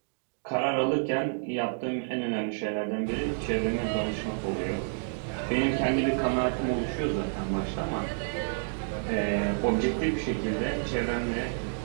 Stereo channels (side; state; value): left; silent; digital silence